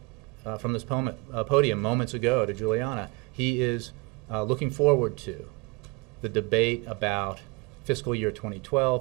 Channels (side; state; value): left; quieter; 27.8 dB